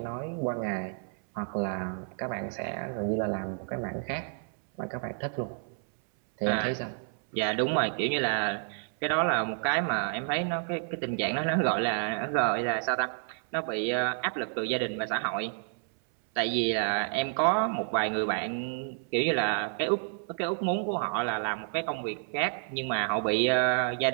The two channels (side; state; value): left; silent; 58 dB below the other